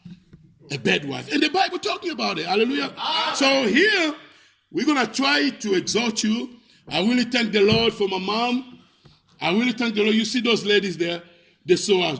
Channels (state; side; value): identical; both; correlation 1.00